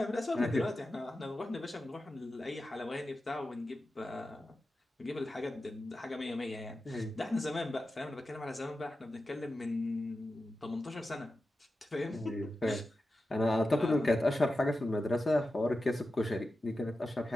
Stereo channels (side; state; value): both; normal; correlation 0.92